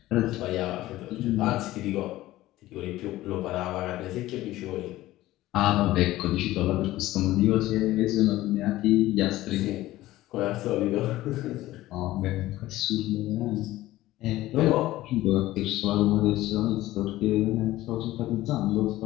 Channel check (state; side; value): quieter; right; 16.2 dB